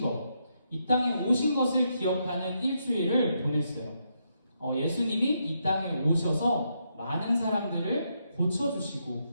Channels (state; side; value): inverted; both; correlation -0.80